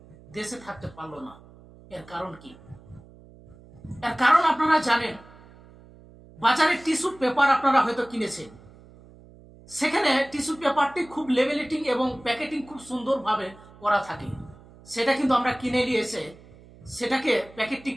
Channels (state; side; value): noise; right; hum, 23 dB below the sound